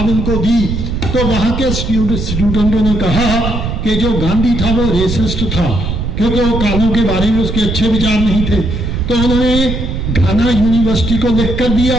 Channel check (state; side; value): noise; right; rumble, 3 dB below the sound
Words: उनको दी, तो वहां के स्टूडेंटों ने कहा कि जो गांधी था वो रेसिस्ट था, क्योंकि वो कालों के बारे में उसके अच्छे विचार नहीं थे। तो उन्होंने घाना यूनिवर्सिटी को लिख कर